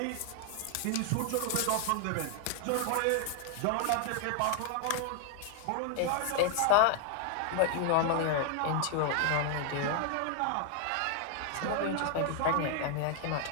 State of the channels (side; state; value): both; different; correlation 0.00